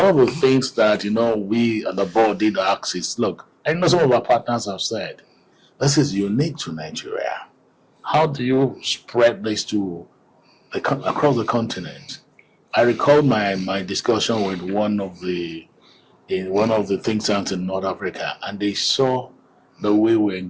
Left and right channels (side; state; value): both; identical; correlation 1.00